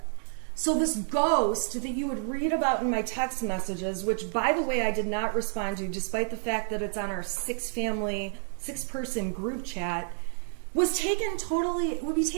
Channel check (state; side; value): silent; left; 58 dB below the other